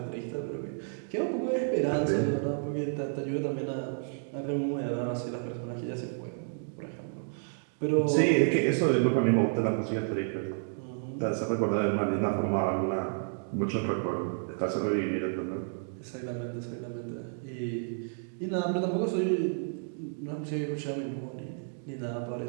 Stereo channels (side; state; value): left; silent; digital silence